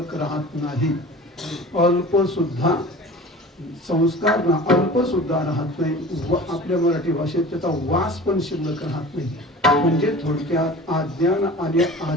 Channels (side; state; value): both; normal; correlation 0.40